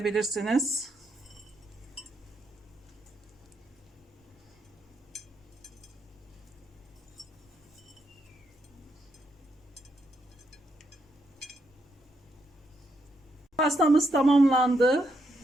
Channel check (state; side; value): normal; both; correlation 0.78